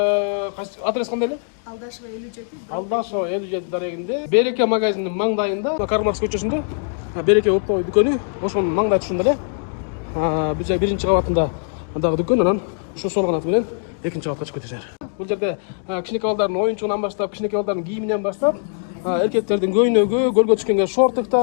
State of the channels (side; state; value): right; silent; digital silence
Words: адрес кандай эле? Алдашева 57. Алдашева 57 дарегинде, Береке магазининин маңдайында, Карл Маркс көчөсүндө, Береке оптовый дүкөнү, ошонун маңдай түшүндө эле. Биз 1-чи кабатында дагы дүкөн, анан ушу сол канаты менен 2-чи кабатка чыгып кетесиңер. Бул жерде кичинекей балдардын оюнчугунан баштап, кичинекей балдардын кийиминен баштап, эркектердин көйнөгү, көлгө түшкөнгө